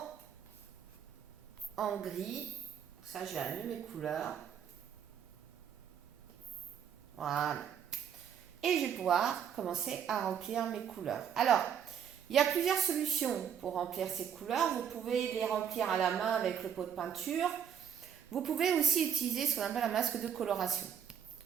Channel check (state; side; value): quieter; left; 8.4 dB